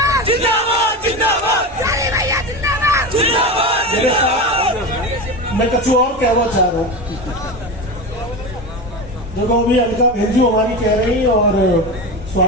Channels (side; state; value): both; normal; correlation 0.23